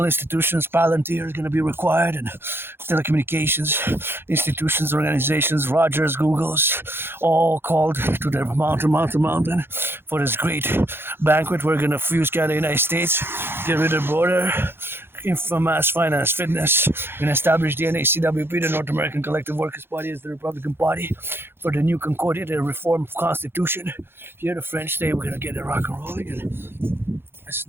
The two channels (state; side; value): late; left; 0.11 ms